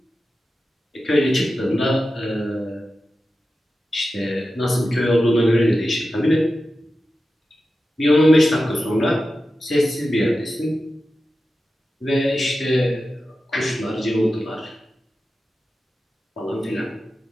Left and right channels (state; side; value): normal; both; correlation 0.92